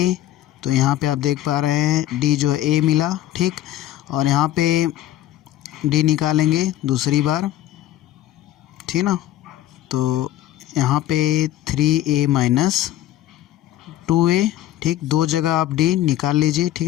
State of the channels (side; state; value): right; quieter; 13.4 dB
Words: तो यहाँ पे आप देख पा रहे हैं डी जो है a मिला। ठीक, और यहाँ पे डी निकालेंगे दूसरी बार, ठीक ना, तो यहाँ पे 3a माइनस 2a, ठीक। दो जगह आप d निकाल लीजिए,